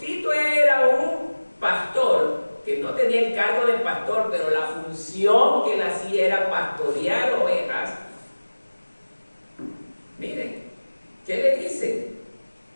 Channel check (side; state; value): both; inverted; correlation -1.00